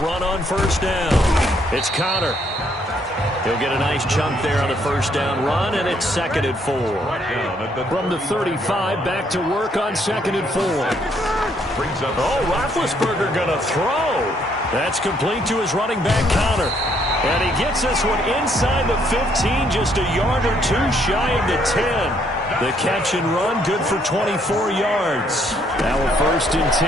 on first down. It's Connor. He'll get a nice chunk there on the first down run, and it's 2nd and 4. From the 35, back to work on 2nd and 4. Oh, Roethlisberger going to throw. That's complete to his running back, Connor. And he gets this one inside the 15, just a yard or two shy of the 10. The catch and run, good for 24 yards. Now a 1st and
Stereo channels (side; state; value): both; normal; correlation 0.69